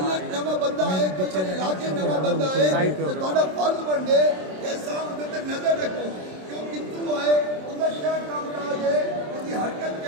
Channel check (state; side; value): late; left; 27 ms